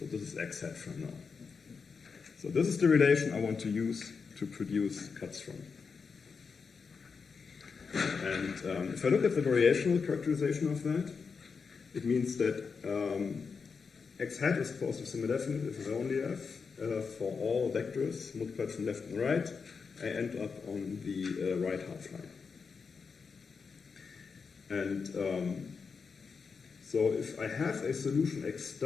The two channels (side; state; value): right; quieter; 5.4 dB